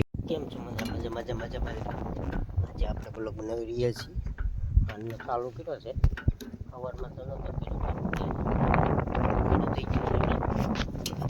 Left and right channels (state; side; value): identical; both; correlation 1.00